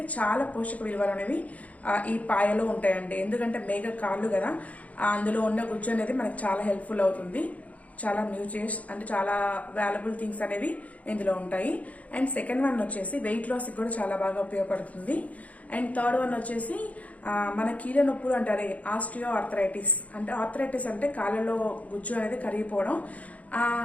చాలా పోషక విలువలు అనేవి ఈ పాయలో ఉంటాయండి. ఎందుకంటే మేక కాళ్ళు కదా, అందులో ఉన్న గుజ్జు అనేది మనకు చాలా హెల్ప్ఫుల్ అవుతుంది. చాలా న్యూట్రిషియస్ అంటే చాలా వాల్యుబుల్ థింగ్స్ అనేవి ఇందులో ఉంటాయి. అండ్ సెకండ్ వన్ వచ్చేసి వెయిట్ లాస్ కూడా చాలా బాగా ఉపయోగపడుతుంది. అండ్ థర్డ్ వన్ వచ్చేసి మన కీళ్ళ నొప్పులు అంటారే, ఆస్టియో ఆర్థరైటిస్ అంటే కాళ్ళలో గుజ్జు అనేది కరిగిపోవడం, ఆ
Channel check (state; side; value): late; right; 0.069 ms